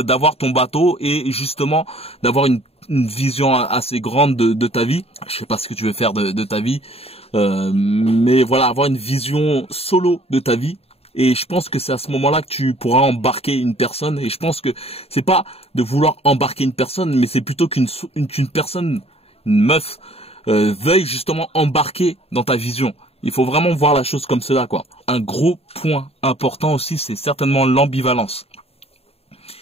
ton bateau et justement d'avoir une vision assez grande de ta vie. Je sais pas ce que tu veux faire de ta vie, mais voilà, avoir une vision solo de ta vie. Et je pense que c'est à ce moment-là que tu pourras embarquer une personne. Et je pense que c'est pas de vouloir embarquer une personne, mais c'est plutôt qu'une personne, une meuf, veuille justement embarquer dans ta vision. Il faut vraiment voir la chose comme cela, quoi. Un gros point important aussi, c'est certainement l'ambivalence.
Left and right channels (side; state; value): right; late; 0.29 ms